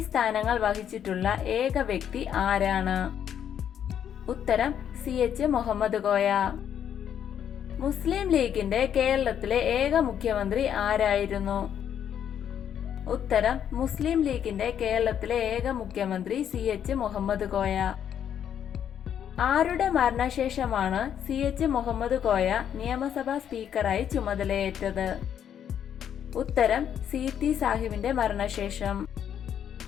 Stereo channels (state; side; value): quieter; right; 9.2 dB